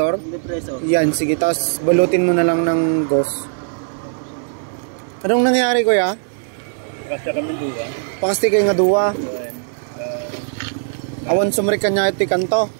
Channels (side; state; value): left; silent; digital silence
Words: Depreso. Yan, sige. Tapos balutin mo na lang ng ghost. Anong nangyari, kuya? Kasi kami duwa. Pakasti kayo nga duwa. Awan sumrik ka niya iti kanto.